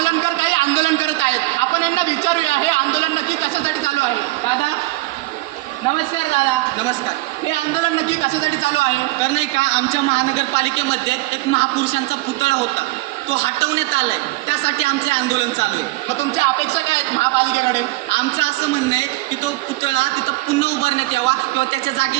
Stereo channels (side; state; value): left; quieter; 20.6 dB